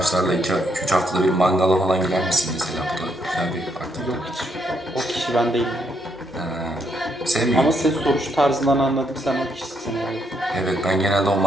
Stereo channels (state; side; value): normal; both; correlation 0.75